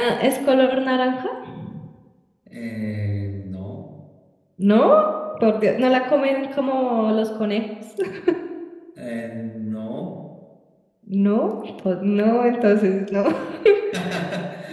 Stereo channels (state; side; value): identical; both; correlation 1.00